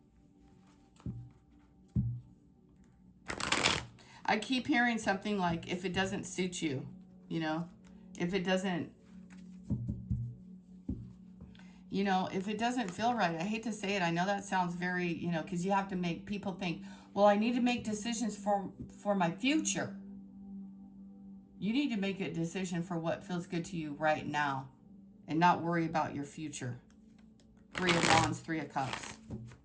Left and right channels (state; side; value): identical; both; correlation 1.00